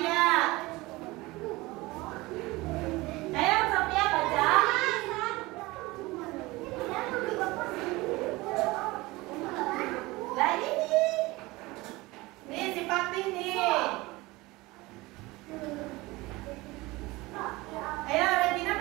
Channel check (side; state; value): left; quieter; 21.3 dB